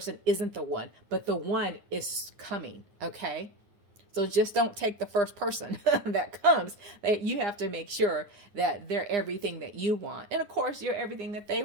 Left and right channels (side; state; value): left; late; 9.8 ms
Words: isn't the one, but the one is coming, okay? So just don't take the first person that comes. That you have to make sure that they're everything that you want. And of course, you're everything that they